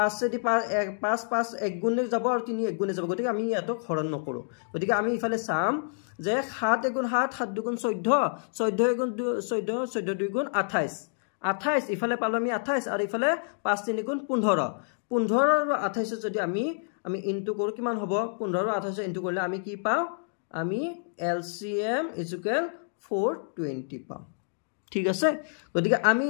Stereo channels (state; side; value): silent; right; digital silence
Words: দি 5 5 1 গুণে যাব আৰু 3 1 গুণে যাব গতিকে আমি ইয়াতো হৰণ নকৰো গতিকে আমি ইফালে চাম যে 7 1 গুণ 7 7 2 গুণ 14 14 1 গুণ 14 14 2 গুণ 28 28 ইফালে পালো আমি 28 আৰু ইফালে 5 3 গুণ 15 15 আৰু 28 যদি আমি ইনটু কৰো কিমান হ'ব 15 আৰু 28 ইনটু কৰিলে আমি কি পাও আমি LCM = 420 পাম ঠিক আছে গতিকে আমি